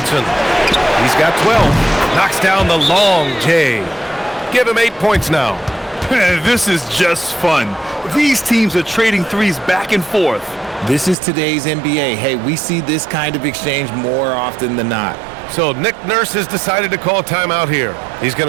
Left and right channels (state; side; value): drops out; left; at 11.2 s